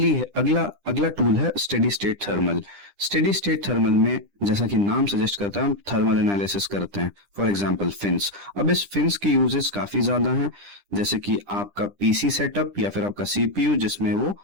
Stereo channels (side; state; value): left; late; 10 ms